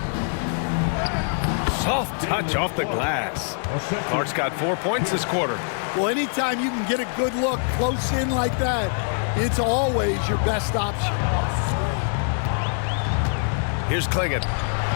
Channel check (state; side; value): silent; right; 63 dB below the other